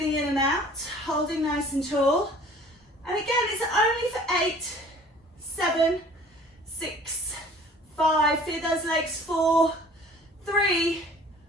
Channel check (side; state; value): both; normal; correlation 0.50